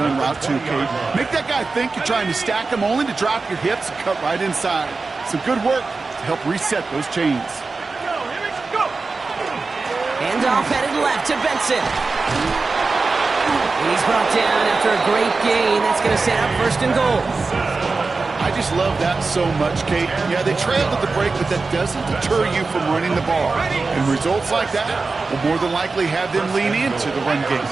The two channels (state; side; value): quieter; left; 4.0 dB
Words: route too, Kate. Make that guy think you're trying to stack him only to drop your hips and cut right inside. Some good work to help reset those chains. Handoff headed left to Benson. He's brought down after a great gain. That's going to set up 1st and goal. I just love that so much, Kate. Yeah, they trailed at the break, but that doesn't deter you from running the ball. And results like that will more than likely have them lean into the run game.